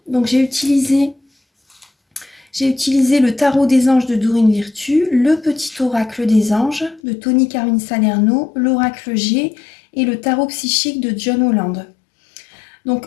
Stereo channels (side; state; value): right; drops out; at 7.0 s